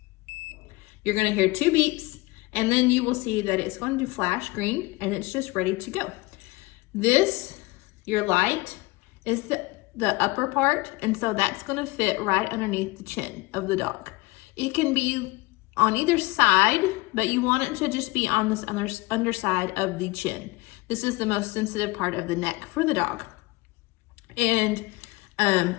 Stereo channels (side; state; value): right; quieter; 22.1 dB